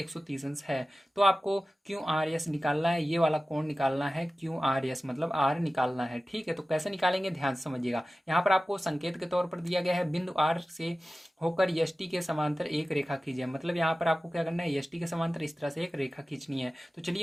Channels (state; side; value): normal; both; correlation 0.96